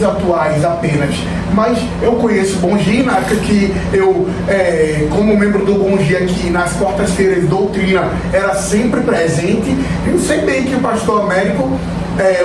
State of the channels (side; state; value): both; identical; correlation 1.00